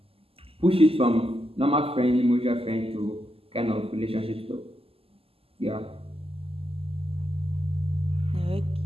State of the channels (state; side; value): late; left; 0.28 ms